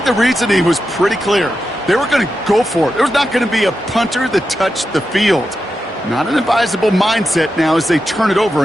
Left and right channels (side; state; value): both; normal; correlation 0.89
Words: the reasoning was pretty clear. They were going to go for it. There was not going to be a punter that touched the field. Not an advisable mindset now as they turn it over